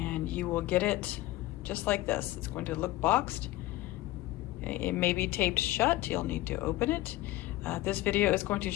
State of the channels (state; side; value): quieter; right; 16.9 dB